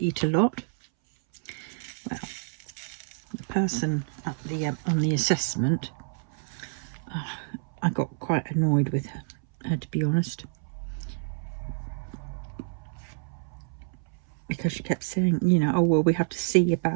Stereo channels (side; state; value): left; silent; 59 dB below the other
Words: eat a lot. Well, the person at the on the assessment, I got quite annoyed with her, to be honest, because she kept saying, you know, oh well, we have to see